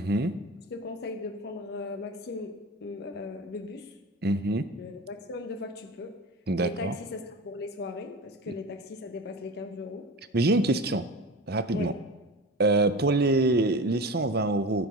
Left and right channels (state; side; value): normal; both; correlation 0.31